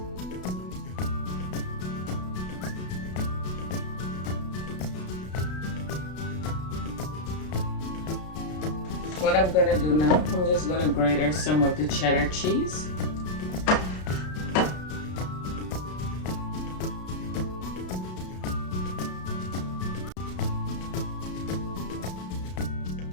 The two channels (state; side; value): late; right; 33 ms